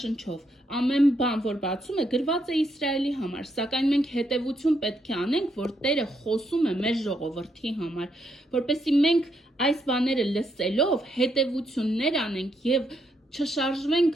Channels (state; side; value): normal; both; correlation 0.77